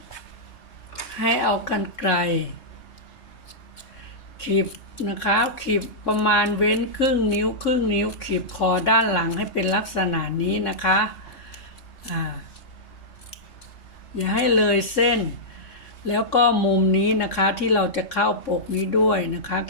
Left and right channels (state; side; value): late; right; 3.6 ms